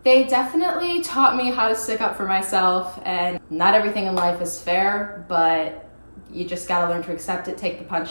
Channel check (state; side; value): inverted; both; correlation -1.00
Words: They definitely taught me how to stick up for myself, and not everything in life is fair, but you just gotta learn to accept it, take the